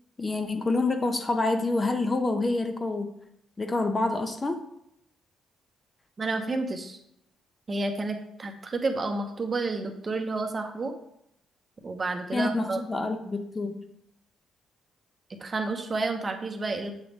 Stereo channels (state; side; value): normal; both; correlation 0.86